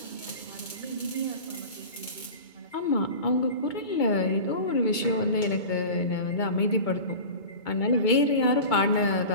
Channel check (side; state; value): right; late; 2.2 ms